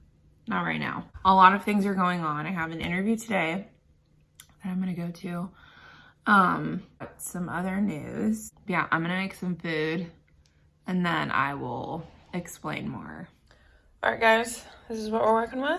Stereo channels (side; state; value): both; identical; correlation 1.00